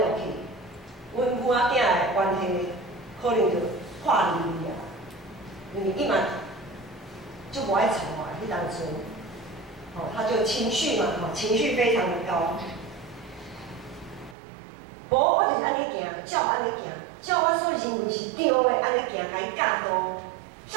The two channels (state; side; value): drops out; left; at 14.4 s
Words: 去，阮母仔囝的关系可能就破裂啊。因为伊嘛就无爱睬我，迄当阵，他就情绪嘛，情绪非常的高。无，我就是安尼行，照安尼行，照我所认为是对的安尼行，甲伊教导，